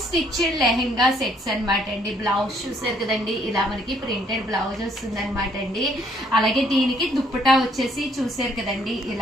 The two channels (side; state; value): both; normal; correlation 0.66